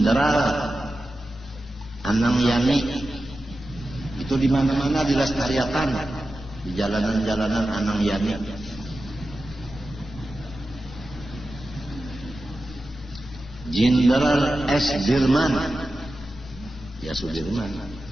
Anang Yani itu di mana-mana dilestarikan di jalanan-jalanan Anang Yani. Jenderal S. Dirman, ya Sudirman,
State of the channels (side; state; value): both; normal; correlation 0.93